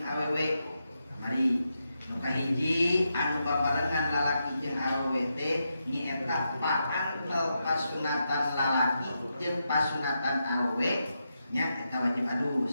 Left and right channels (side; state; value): both; inverted; correlation -0.85